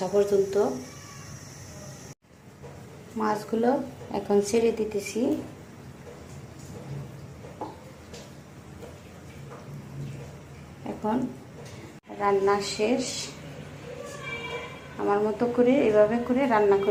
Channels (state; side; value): identical; both; correlation 1.00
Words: পর্যন্ত। মাছগুলো এখন ছেড়ে দিতেছি। এখন রান্না শেষ। আমার মতো করে এভাবে করে রান্না